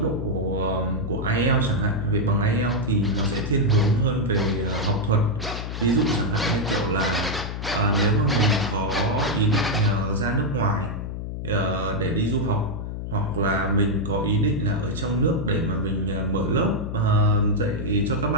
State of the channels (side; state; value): left; noise; hum, 6 dB below the sound